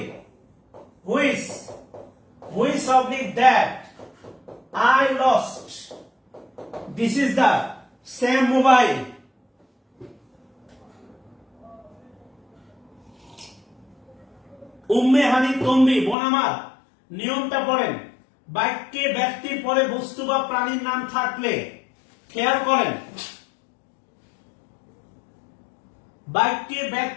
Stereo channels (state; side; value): drops out; right; at 16.2 s